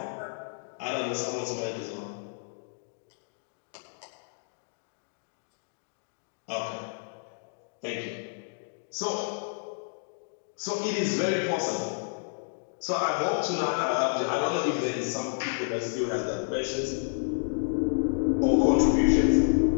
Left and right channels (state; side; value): silent; right; digital silence